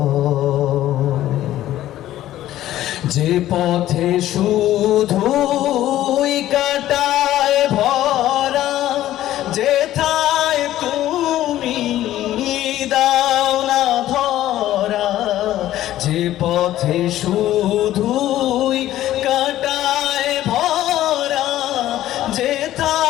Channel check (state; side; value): quieter; right; 13.7 dB